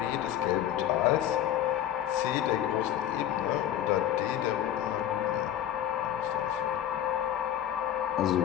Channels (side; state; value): right; quieter; 11.4 dB